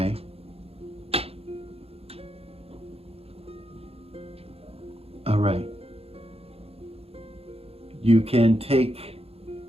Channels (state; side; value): late; left; 0.29 ms